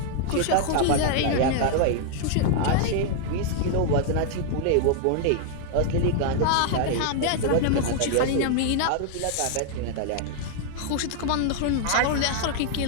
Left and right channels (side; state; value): both; different; correlation -0.01